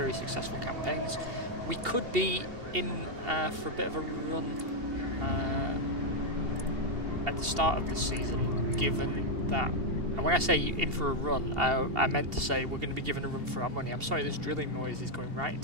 successful campaigns. We could be in for a bit of a run at the start of the season, given that, and when I say in for a run, I meant to say we're going to be given a run for our money. I'm sorry, this drilling noise is going right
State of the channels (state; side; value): late; left; 2.8 ms